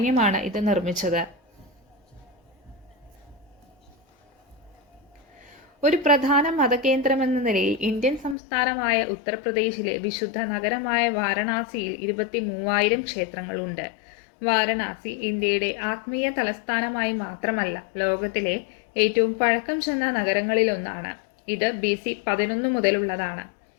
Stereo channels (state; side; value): drops out; right; at 8.3 s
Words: ഇത് നിർമ്മിച്ചത്. ഒരു പ്രധാന മതകേന്ദ്രമെന്ന നിലയിൽ ഇന്ത്യൻ സംസ്ഥാനമായ ഉത്തർപ്രദേശിലെ വിശുദ്ധ നഗരമായ വാരണാസിയിൽ 23,000 ക്ഷേത്രങ്ങളുണ്ട്. വാരണാസി ഇന്ത്യയുടെ ആത്മീയ തലസ്ഥാനമായി മാത്രമല്ല, ലോകത്തിലെ ഏറ്റവും പഴക്കം ചെന്ന നഗരങ്ങളിലൊന്നാണ്. ഇത് BC 11 മുതലുള്ളതാണ്.